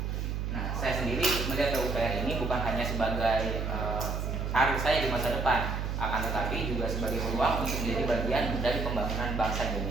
Nah, saya sendiri melihat PUPR ini bukan hanya sebagai karir saya di masa depan, akan tetapi juga sebagai peluang untuk menjadi bagian dari pembangunan bangsa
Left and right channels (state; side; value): noise; right; hum, 2 dB below the sound